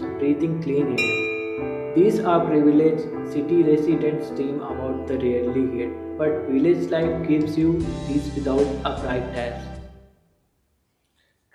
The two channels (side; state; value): both; identical; correlation 1.00